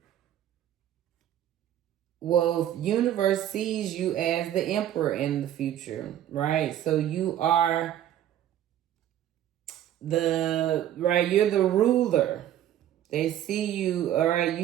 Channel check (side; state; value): left; quieter; 11.4 dB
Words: well, universe sees you as the emperor in the future, right? So you are you're the ruler. They see you, all right,